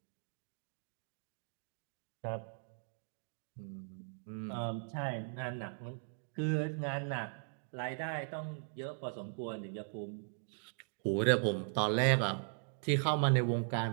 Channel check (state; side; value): silent; left; digital silence